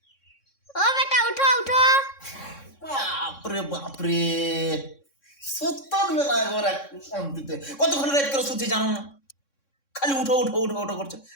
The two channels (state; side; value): late; right; 3.6 ms